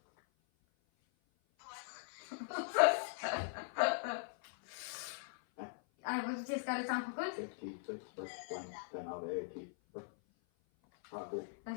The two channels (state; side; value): silent; right; 51 dB below the other